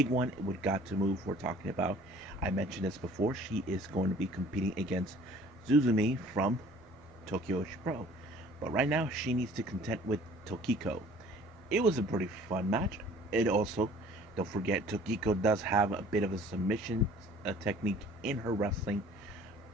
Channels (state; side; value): normal; both; correlation 0.51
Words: one with Got to Move we're talking about. I mentioned this before. She is going to be competing against Zuzumi from Tokyo Pro. But right now, she needs to contend with Tokiko. It was a pretty fun match. It also, don't forget, Tokiko does have a bit of a submission technique in her wrestling.